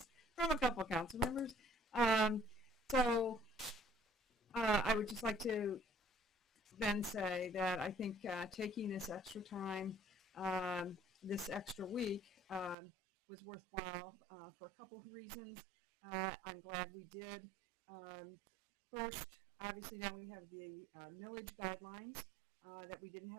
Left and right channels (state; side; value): drops out; left; at 12.8 s